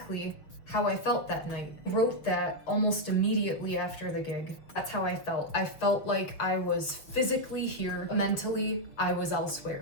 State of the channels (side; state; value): right; late; 6.4 ms